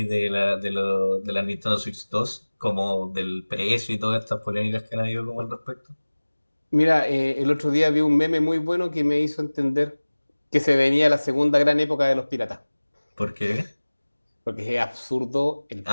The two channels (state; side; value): inverted; both; correlation -1.00